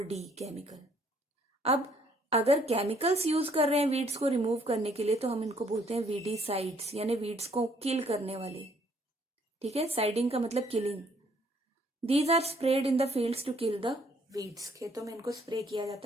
केमिकल। अब अगर केमिकल्स यूज कर रहे हैं वीड्स को रिमूव करने के लिए, तो हम इनको बोलते हैं वीडीसाइड्स, यानी वीड्स को किल करने वाले, ठीक है। साइडिंग का मतलब killing. These are spread in the fields to kill the weeds. खेतों में इनको स्प्रे किया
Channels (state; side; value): normal; both; correlation 0.65